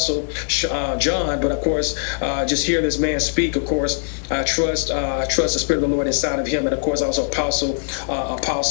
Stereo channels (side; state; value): right; silent; digital silence